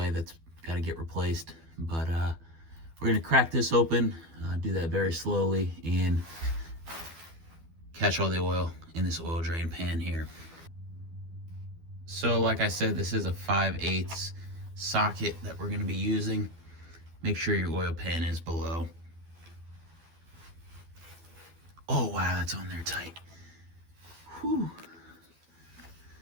that's got to get replaced. But we're going to crack this open, do that very slowly, and catch all the oil in this oil drain pan here. So like I said, this is a 5/8 socket that we're going to be using. Make sure your oil pan is below. Oh wow, that's on there tight. Whew.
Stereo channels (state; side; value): late; left; 12 ms